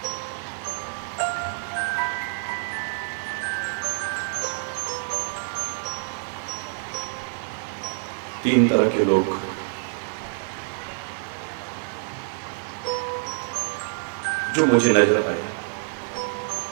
तीन तरह के लोग जो मुझे नजर आए।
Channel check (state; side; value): silent; left; digital silence